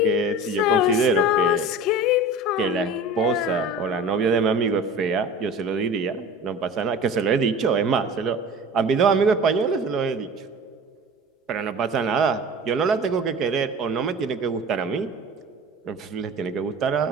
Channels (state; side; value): normal; both; correlation 0.38